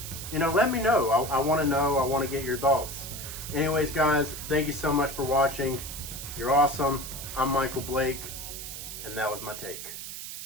You know, let me know. I want to know. I want to get your thoughts. Anyways, guys, thank you so much for watching. You're awesome. I'm Michael Blake, and that was my take.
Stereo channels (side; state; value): right; noise; hiss, 9 dB below the sound